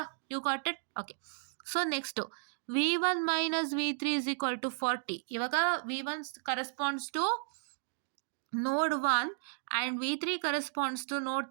You got it? Okay. So next V1 - V3 = 40. ಇವಾಗ V1 corresponds to node 1 and V3 corresponds to ನೋಡ್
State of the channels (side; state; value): left; silent; digital silence